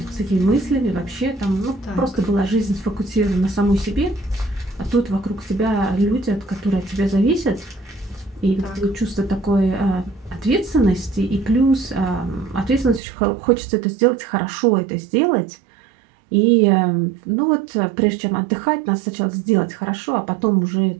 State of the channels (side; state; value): left; drops out; at 13.0 s